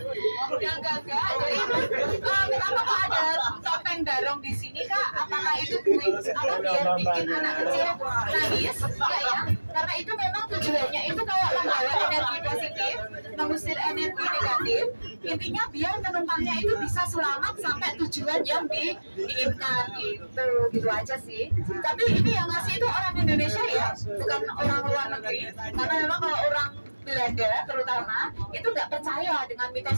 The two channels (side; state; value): both; inverted; correlation -1.00